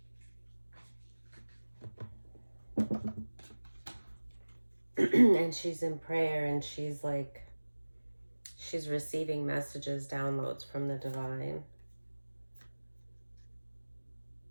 And she's in prayer, and she's like, she's receiving messages, downloads from the divine.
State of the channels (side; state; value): both; inverted; correlation -1.00